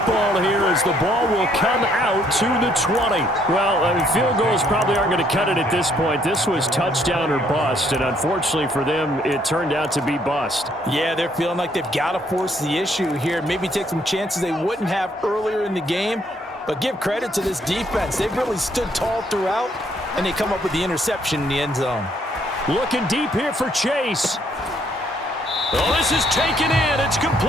here as the ball will come out to the 20. Well, I mean, field goals probably aren't going to cut it at this point. This was touchdown or bust, and unfortunately for them, it turned out to be bust. Yeah, they're feeling like they've got to force the issue here. Maybe take some chances they wouldn't have earlier in the game. But give credit to this defense. They've really stood tall throughout, and they come up with the interception in the end zone. Looking deep here for Chase. Oh, this is taken in. It's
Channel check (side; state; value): both; normal; correlation 0.67